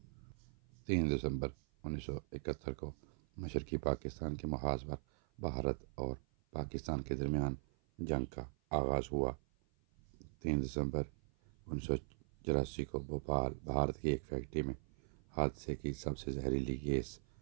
3 دسمبر 1971 کو مشرقی پاکستان کے محاذ پر بھارت اور پاکستان کے درمیان جنگ کا آغاز ہوا۔ 3 دسمبر 1984 کو بھوپال، بھارت کی ایک فیکٹری میں حادثے کی سب سے زہریلی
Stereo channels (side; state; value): left; silent; 51 dB below the other